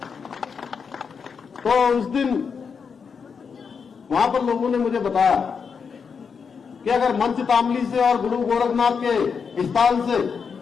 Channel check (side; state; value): right; quieter; 6.0 dB